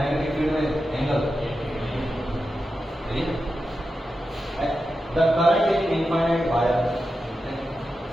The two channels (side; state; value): both; normal; correlation 0.90